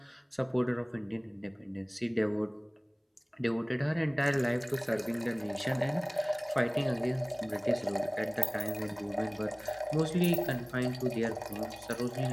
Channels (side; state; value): both; identical; correlation 1.00